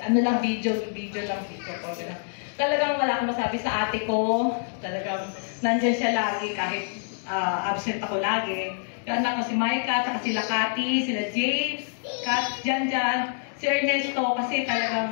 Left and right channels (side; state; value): right; silent; digital silence